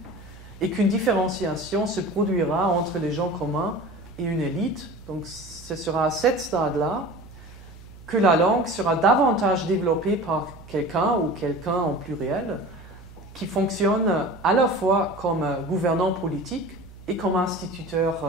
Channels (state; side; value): noise; right; hum, 19 dB below the sound